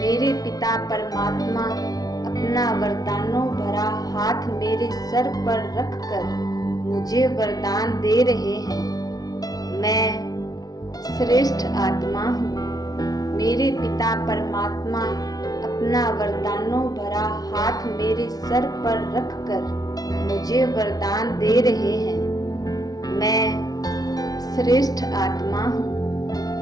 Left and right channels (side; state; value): right; late; 0.18 ms